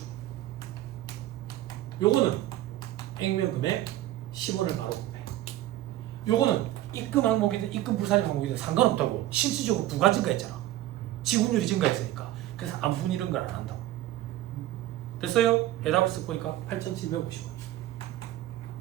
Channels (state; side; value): quieter; left; 14.5 dB